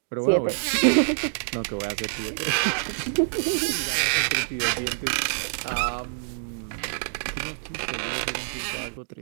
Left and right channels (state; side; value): silent; left; digital silence